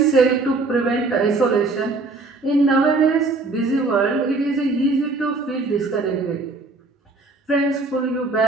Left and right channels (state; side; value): quieter; left; 3.5 dB